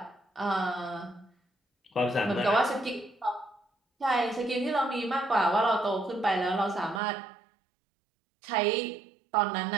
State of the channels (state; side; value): drops out; left; at 7.0 s